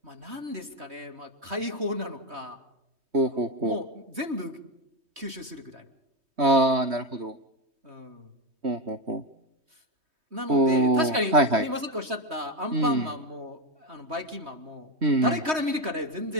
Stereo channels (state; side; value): late; left; 3.2 ms